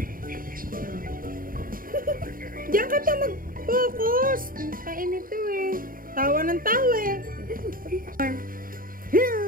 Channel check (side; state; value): left; late; 0.41 ms